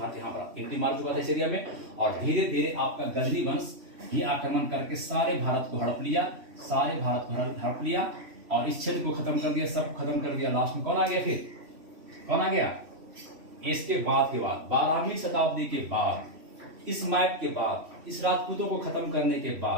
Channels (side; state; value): left; late; 3.1 ms